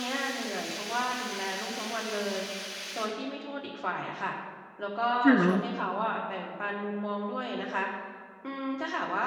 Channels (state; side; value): identical; both; correlation 1.00